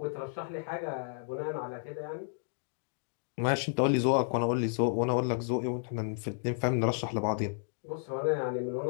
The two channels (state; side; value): silent; right; digital silence